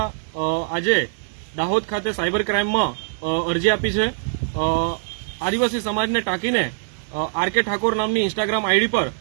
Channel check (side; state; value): left; silent; digital silence